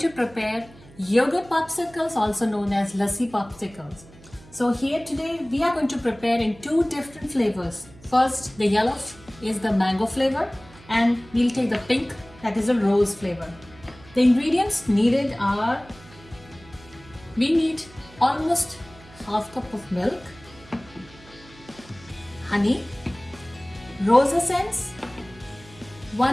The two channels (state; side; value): noise; right; hum, 22 dB below the sound